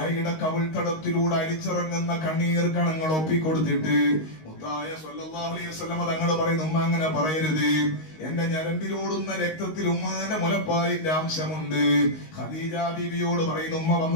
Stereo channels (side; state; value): right; late; 19 ms